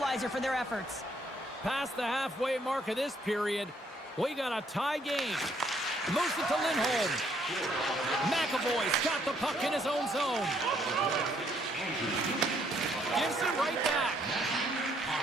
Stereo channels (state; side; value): normal; both; correlation 0.68